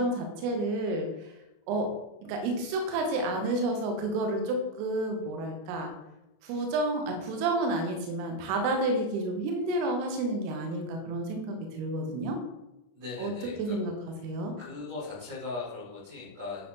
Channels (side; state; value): left; late; 25 ms